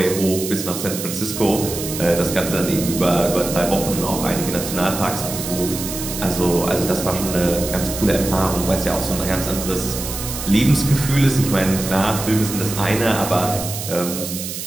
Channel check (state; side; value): noise; right; hiss, 7 dB below the sound